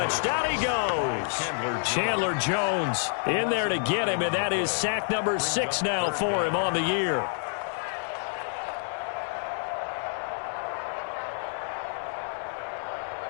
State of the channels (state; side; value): silent; right; digital silence